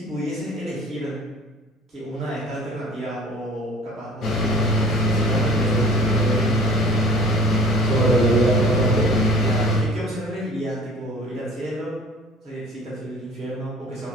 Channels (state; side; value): normal; both; correlation 0.47